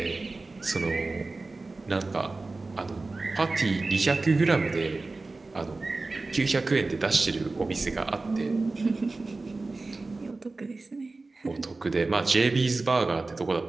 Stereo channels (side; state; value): left; quieter; 3.5 dB